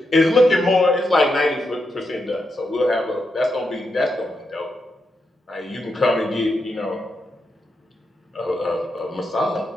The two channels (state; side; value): normal; both; correlation 0.84